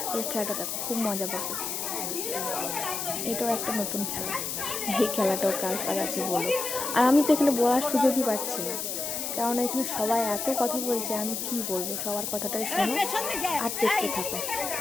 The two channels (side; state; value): left; noise; hiss, 3 dB below the sound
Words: এই খেলাটা দেখো, খুব মজা পাবে। এটাও একটা নতুন খেলা, এই খেলাটাও কার কার আছে বলো। আর আমি তো এখানে বলার সুযোগই পাচ্ছি না, কারণ এখানে সবাই এত কথা বলছে, আমি কি বলবো। সবার কথাটাই শোনো আর দেখতে থাকো